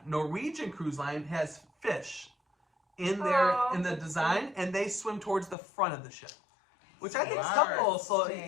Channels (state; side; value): drops out; right; at 5.6 s